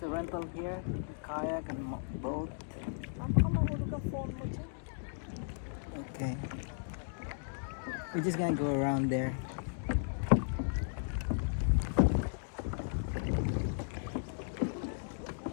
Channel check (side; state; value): right; silent; digital silence